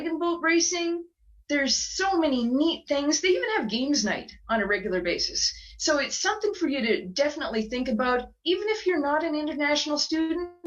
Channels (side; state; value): both; identical; correlation 1.00